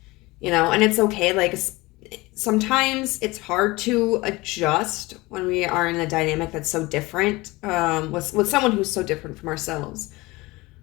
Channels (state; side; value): quieter; right; 21.9 dB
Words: you know. And it's okay, like, sometimes it's hard to adjust when we are in a dynamic that's so different with someone who's so different from ourselves.